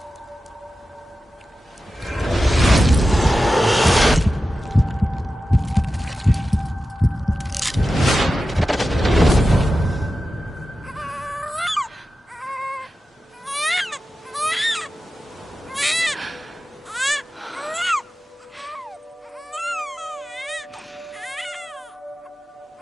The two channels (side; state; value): both; normal; correlation 0.93